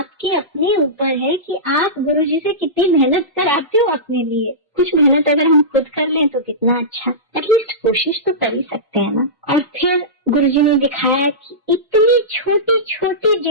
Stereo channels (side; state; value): both; normal; correlation -0.18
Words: अपने ऊपर है कि आप गुरुजी से कितनी मेहनत कराते हो अपने लिए। कुछ मेहनत अगर हम खुद कर लें तो कितना अच्छा, एटलीस्ट कोशिश तो कर ही सकते हैं ना। और फिर गुरुजी ने दिखाया कि इतनी छोटी छोटी